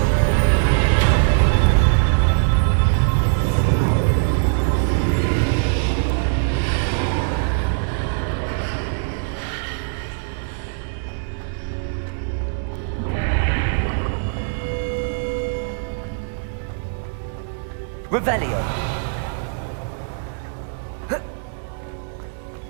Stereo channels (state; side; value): silent; left; 65 dB below the other